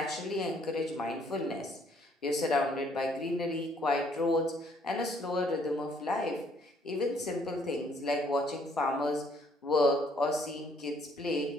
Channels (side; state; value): both; normal; correlation 0.65